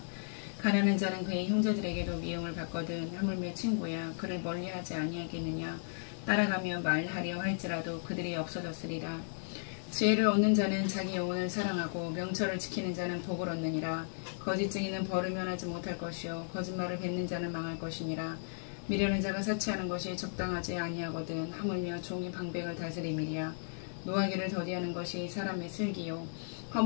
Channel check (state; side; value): silent; right; digital silence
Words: 가난한 자는 그의 형제들에게도 미움을 받거든 하물며 친구야 그를 멀리하지 아니하겠느냐. 따라가며 말하려 할지라도 그들이 없어졌으리라. 지혜를 얻는 자는 자기 영혼을 사랑하고 명철을 지키는 자는 복을 얻느니라. 거짓 증인은 벌을 면하지 못할 것이요 거짓말을 뱉는 자는 망할 것이니라. 미련한 자가 사치하는 것이 적당하지 아니하거든 하물며 종이 방백을 다스림이리야. 노하기를 더디하는 것이 사람의 슬기요